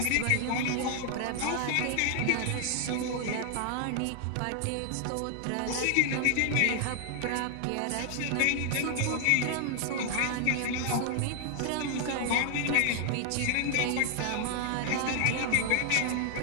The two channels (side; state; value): both; different; correlation 0.00